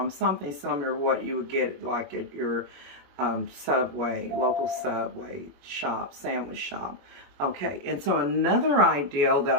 Something similar to what you would get like at your Subway, local Subway shop, sandwich shop. Okay, and so another ideal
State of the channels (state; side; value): late; left; 21 ms